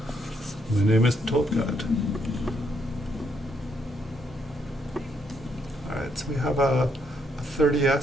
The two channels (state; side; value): normal; both; correlation 0.74